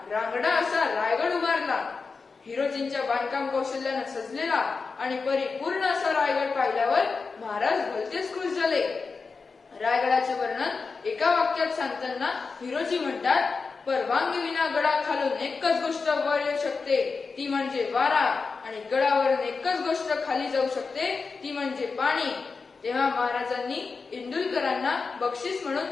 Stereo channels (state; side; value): quieter; right; 4.6 dB